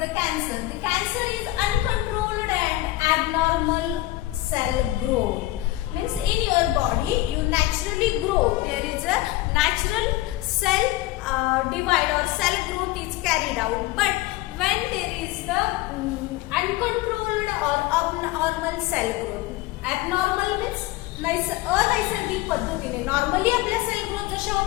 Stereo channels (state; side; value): quieter; right; 17.3 dB